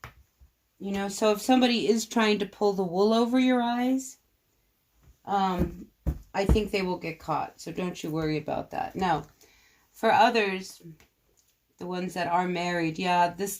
So if somebody is trying to pull the wool over your eyes, I think they will get caught. So don't you worry about that. Now, for others, the ones that are married, yeah,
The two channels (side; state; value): both; identical; correlation 1.00